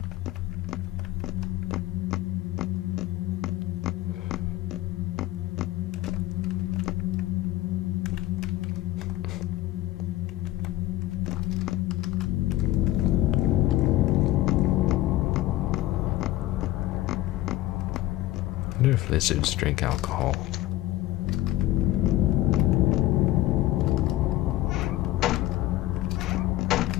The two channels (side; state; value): right; quieter; 16.2 dB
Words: I wonder if lizards drink alcohol.